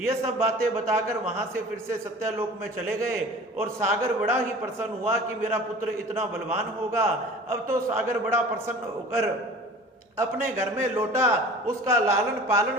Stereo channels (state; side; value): normal; both; correlation 0.42